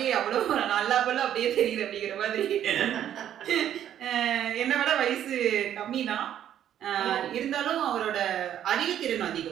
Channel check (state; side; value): quieter; left; 10.6 dB